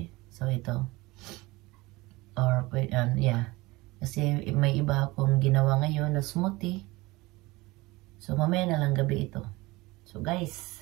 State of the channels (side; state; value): left; quieter; 21.7 dB